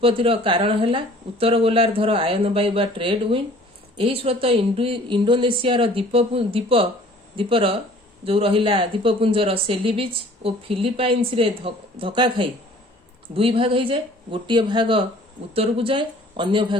कारण है उत्तर गोलार्धर आयन वायु बा ट्रेड विंड। यही स्रोत इंडोनेशियार द्वीपर जो रहिला द्वीपपुंजर सेली बीच और फिलिपाइन्स रे धक्का खाई दुई भाग हो जाए। गोटे भाग उत्तर को जाए, अन्य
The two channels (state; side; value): normal; both; correlation 0.51